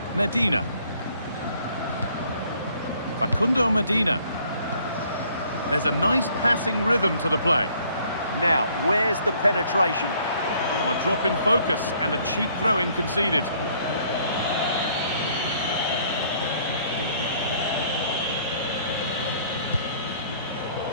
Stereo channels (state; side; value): inverted; both; correlation -0.61